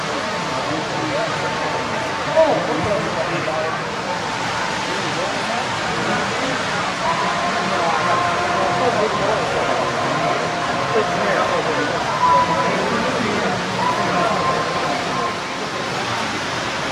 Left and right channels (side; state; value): both; identical; correlation 1.00